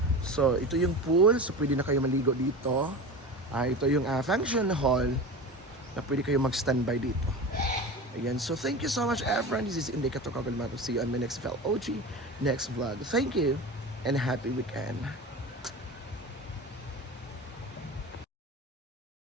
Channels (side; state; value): both; normal; correlation 0.30